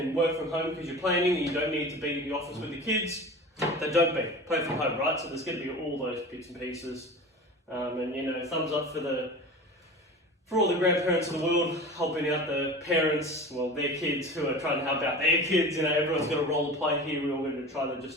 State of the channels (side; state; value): both; normal; correlation 0.35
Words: work from home because you're planning and you don't need to be in the office with the kids, then don't be. Play from home, right? So there's going to be all those bits and pieces. And you know, thumbs up for all the grandparents in the world helping out the parents, well, their kids who are trying to help out their kids. You know, everyone's got a role to play here. We're all going to try to just